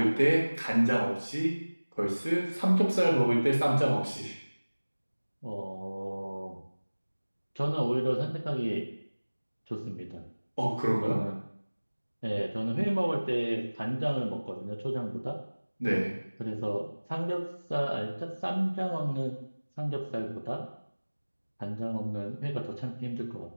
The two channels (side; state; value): both; inverted; correlation -1.00